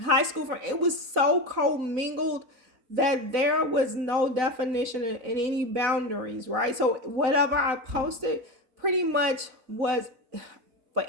high school friend. It was so commingled that there was no definition in any boundaries, right? So whatever I posted pretty much was for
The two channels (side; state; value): left; late; 4.0 ms